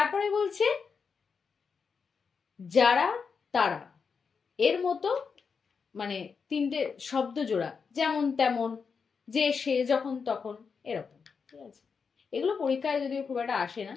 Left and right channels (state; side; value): quieter; right; 5.7 dB